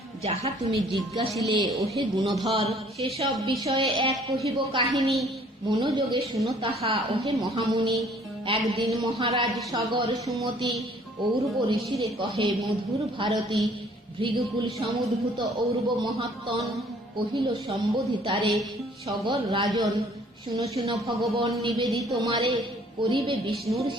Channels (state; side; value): normal; both; correlation 0.58